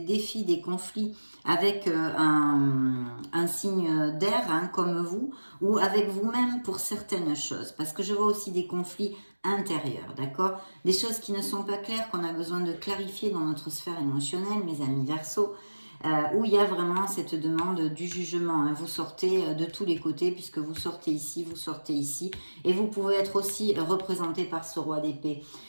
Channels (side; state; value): both; inverted; correlation -1.00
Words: défis, des conflits avec un signe d'air, hein, comme vous, ou avec vous-même pour certaines choses. Parce que je vois aussi des conflits intérieurs, d'accord? Des choses qui ne sont pas claires, qu'on a besoin de clarifier dans notre sphère émotionnelle, mes amis Verseaux, où il y a vraiment cette demande du jugement, hein. Vous sortez de tous les côtés puisque vous sortez ici, et vous pouvez être aussi représenté par ce roi d'épée.